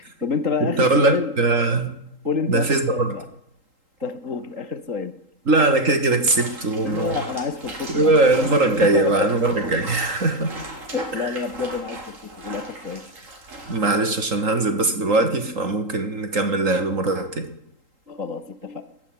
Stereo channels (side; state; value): left; late; 3.8 ms